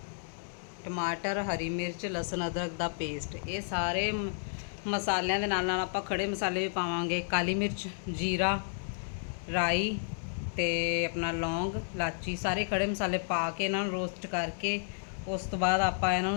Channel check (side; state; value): right; silent; digital silence